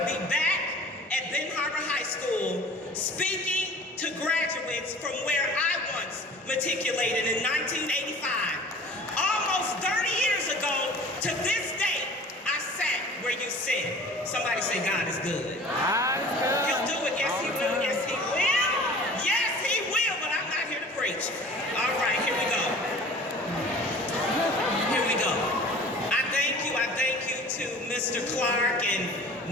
be back at Benton Harbor High School speaking to graduates from where I once matriculated in 1985. Almost 30 years ago to this day, I sat where you sit. Somebody say, God is good. God is good. He'll do it. Yes, he will. Yes, he will. Yes, he will, but I'm not here to preach. All right, here we go. Here we go. I thank you to Mr. Clark and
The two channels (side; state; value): both; normal; correlation 0.44